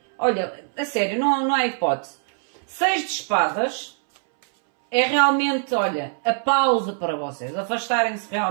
Olha, a sério, não há hipótese. 6 de espadas é realmente, olha, a pausa para vocês. Afastarem-se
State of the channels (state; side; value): silent; left; 64 dB below the other